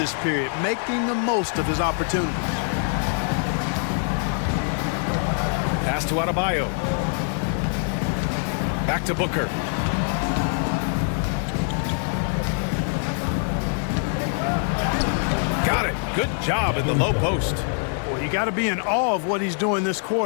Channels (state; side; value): silent; right; 56 dB below the other